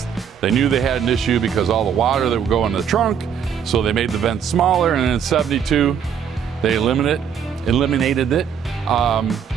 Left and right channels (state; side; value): quieter; left; 7.8 dB